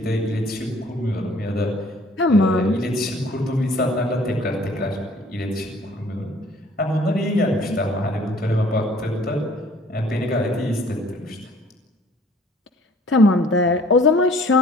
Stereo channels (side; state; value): both; normal; correlation 0.55